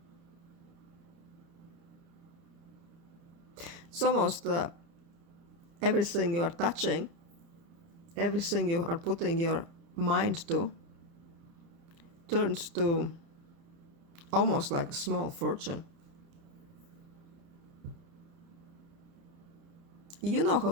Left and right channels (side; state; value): left; late; 30 ms